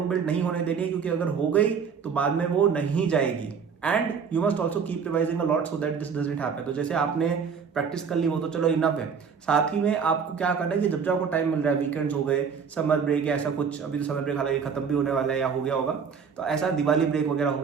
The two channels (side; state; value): left; quieter; 6.3 dB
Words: बिल्ड नहीं होने देनी है, क्योंकि अगर हो गई तो बाद में वो नहीं जाएगी। And you must also keep revising a lot so that this doesn't happen. तो जैसे आपने प्रैक्टिस कर ली वो तो चलो इनफ है, साथ ही में आपको क्या करना है कि जब जब आपको टाइम मिल रहा है, वीकेंड्स हो गए, समर ब्रेक या ऐसा कुछ, अभी तो समर ब्रेक हालांकि खत्म भी होने वाला है या हो गया होगा, तो ऐसा दिवाली ब्रेक वगैरह हो